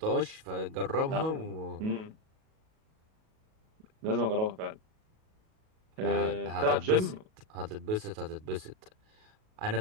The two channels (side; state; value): left; late; 37 ms